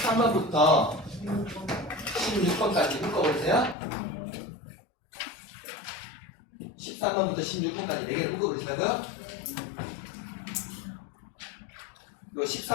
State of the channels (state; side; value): drops out; right; at 3.8 s